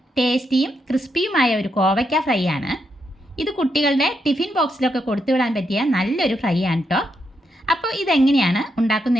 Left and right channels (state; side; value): normal; both; correlation 0.81